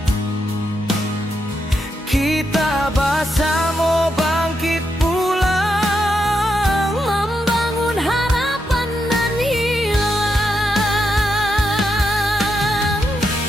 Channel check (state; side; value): normal; both; correlation 0.83